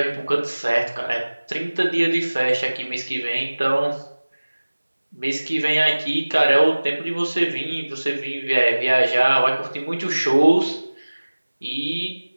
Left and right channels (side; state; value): both; inverted; correlation -1.00